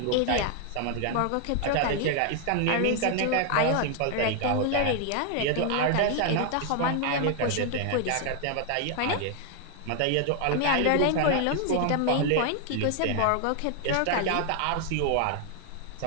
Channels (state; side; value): different; both; correlation 0.00